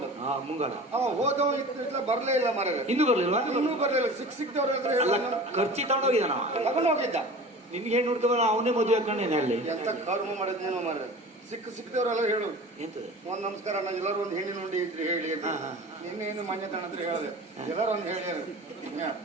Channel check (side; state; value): both; normal; correlation 0.38